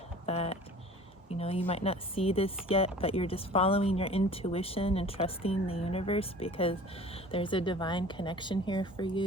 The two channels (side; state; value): both; normal; correlation 0.44